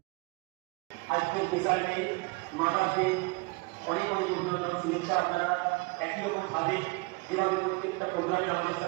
আজকের বিষয়ে মাদারকে অনেক অনেক অভিনন্দন, শুভেচ্ছা। আপনারা একই রকম ভাবে যেভাবে প্রত্যেকটা প্রোগ্রামে আমাদের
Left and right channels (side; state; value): left; quieter; 27.3 dB